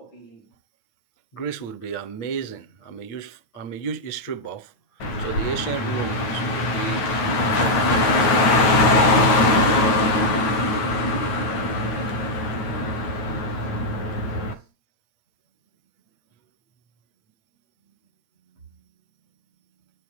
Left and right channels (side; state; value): right; late; 9.3 ms